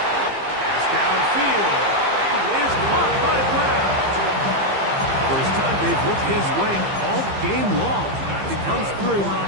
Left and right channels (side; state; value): left; late; 15 ms